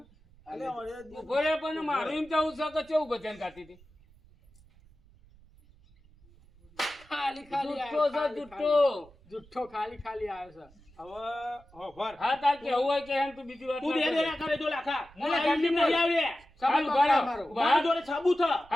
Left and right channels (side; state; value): right; noise; rumble, 26 dB below the sound